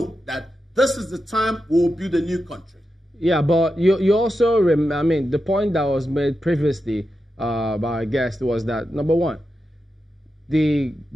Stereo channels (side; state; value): both; normal; correlation 0.89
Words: that this is the time we will build a new country. Yeah, but you also, I mean, the point that was made previously by our guest was that, number one, the